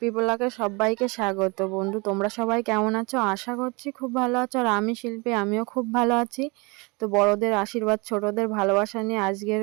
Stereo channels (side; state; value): left; quieter; 27.7 dB